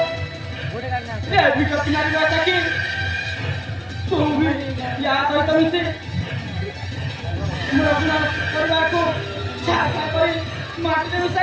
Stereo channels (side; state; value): both; identical; correlation 1.00